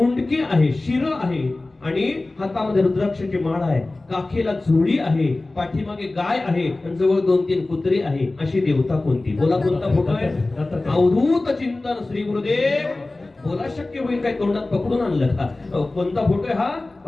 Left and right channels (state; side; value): quieter; right; 3.0 dB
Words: आहे, शिर आहे आणि हातामध्ये रुद्राक्षाची माळ आहे. काखेला चोळी आहे, पाठीमागे गाय आहे आणि जवळ 2-3 कुत्री आहे. अशी देवता कोणती? बोला. कोणता फोटो आहे? अवधूत चिंतन श्री गुरुदेव. बोला. शक्य होईल काय? तोंडात पकडून आणलं का? कोणता फोटो आहे हा?